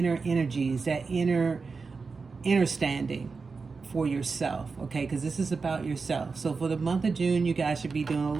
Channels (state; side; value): quieter; left; 4.6 dB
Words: energies, that inner standing for yourself, okay? Because this is about yourself. So for the month of June, you guys should be doing a